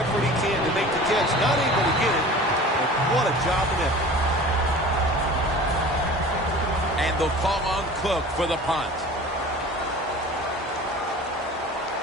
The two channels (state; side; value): normal; both; correlation 0.40